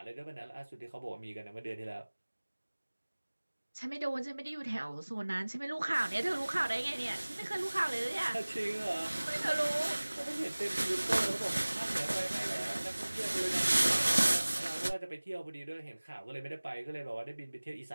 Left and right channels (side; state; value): both; inverted; correlation -1.00